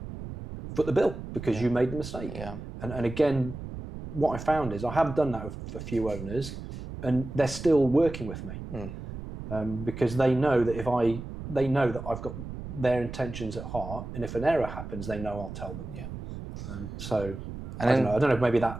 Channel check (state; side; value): noise; right; rumble, 9 dB below the sound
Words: foot the bill because you made the mistake. Yeah. And again, what I found is I have done that with a few owners, and they're still working with me because they know that I've got their intentions at heart, and if an error happens, they know I'll tell them. Yeah. I don't know if maybe